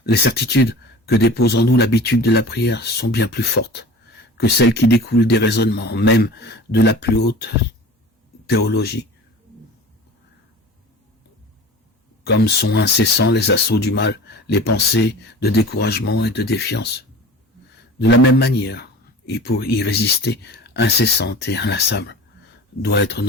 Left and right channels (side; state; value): both; normal; correlation 0.38